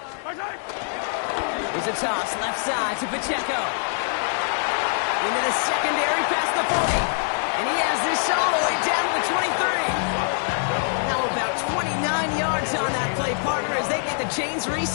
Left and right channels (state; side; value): silent; right; 63 dB below the other